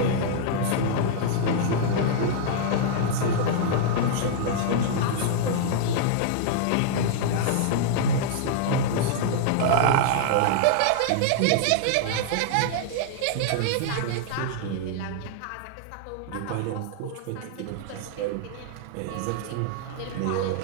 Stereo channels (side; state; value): both; different; correlation -0.01